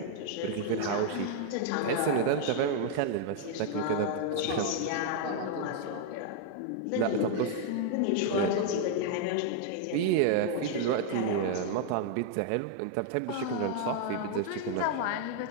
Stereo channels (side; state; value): both; different; correlation 0.00